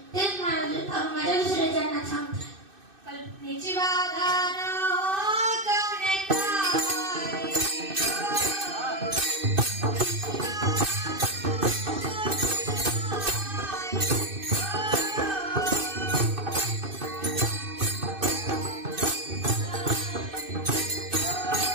तेच माझ्या दुसऱ्या चरणात सांगतात. कल्पनेची बाधा न हो कवने काय.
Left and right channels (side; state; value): left; late; 2.6 ms